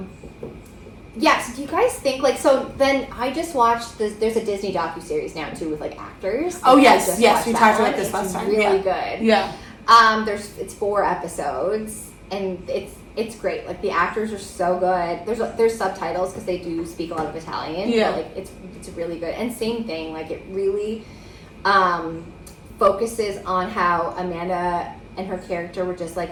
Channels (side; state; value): both; identical; correlation 1.00